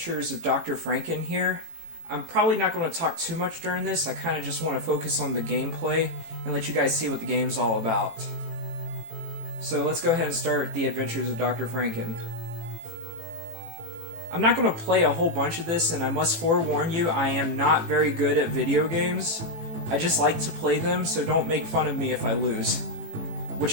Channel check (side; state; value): left; late; 18 ms